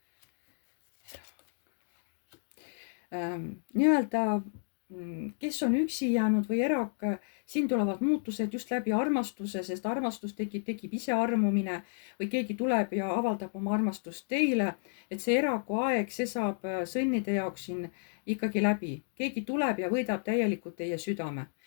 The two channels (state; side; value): silent; right; digital silence